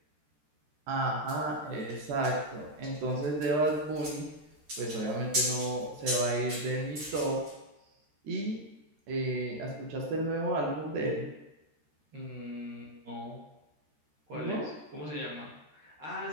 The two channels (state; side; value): late; left; 13 ms